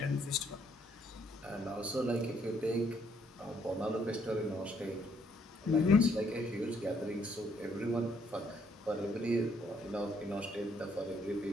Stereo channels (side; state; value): both; normal; correlation 0.69